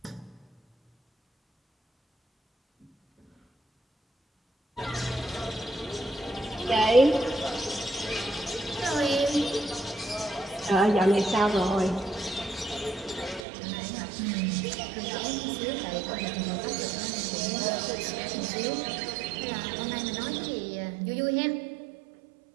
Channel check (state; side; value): drops out; left; at 13.5 s